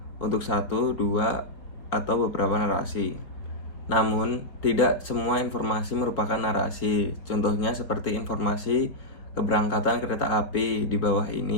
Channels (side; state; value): right; late; 4.6 ms